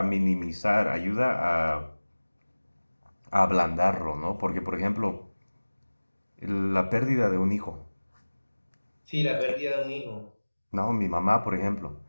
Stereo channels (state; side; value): inverted; both; correlation -1.00